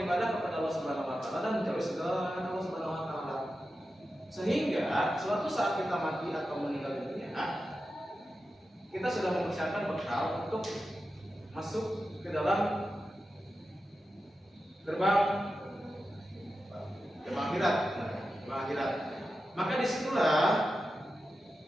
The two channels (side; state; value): both; normal; correlation 0.91